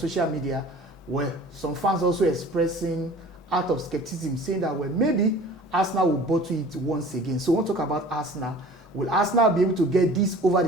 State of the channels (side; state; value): both; normal; correlation 0.45